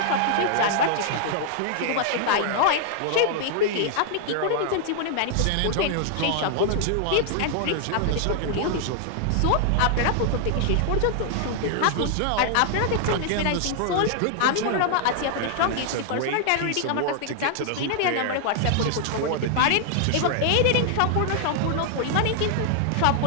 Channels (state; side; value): different; both; correlation 0.00